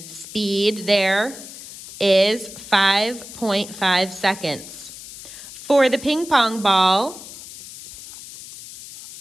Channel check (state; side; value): noise; left; hiss, 14 dB below the sound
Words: speed there is 5.5 seconds. For the ping pong ball,